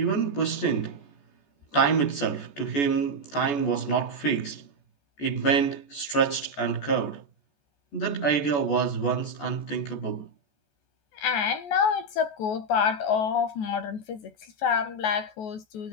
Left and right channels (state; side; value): late; right; 14 ms